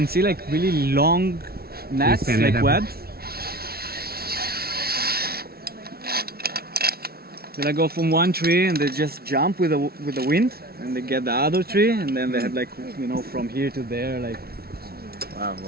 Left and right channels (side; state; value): left; late; 0.45 ms